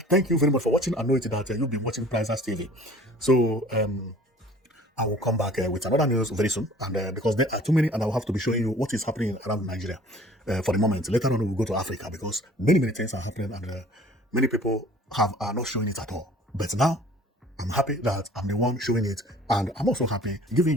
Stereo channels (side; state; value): both; normal; correlation 0.50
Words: thank you very much for watching. I know it that you'll be watching Prizers TV. So I will come back with another news very soon. And because there are too many, and I will have to be showing you what is happening around Nigeria for the moment. Later on, we'll go to Africa because many, many things are happening, and many people are not showing it at all. But now, I'm happy that I'm the one showing it, and I'm also happy